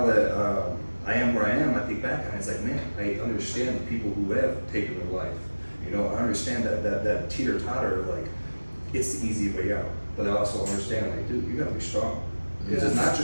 that I am where I am, I think back and it's like, man, I understand the people who have taken their life. You know, I understand that teeter-totter of like, it's the easy way out. But I also understand, like, dude, you gotta be strong. Because it's not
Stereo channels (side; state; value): both; inverted; correlation -1.00